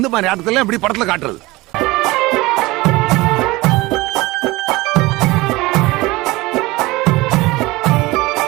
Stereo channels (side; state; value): left; quieter; 21.0 dB